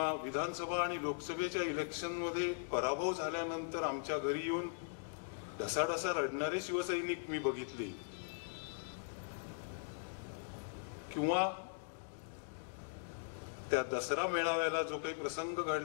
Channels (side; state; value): right; silent; digital silence